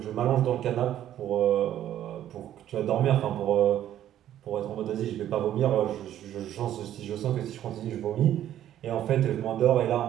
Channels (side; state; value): left; quieter; 11.6 dB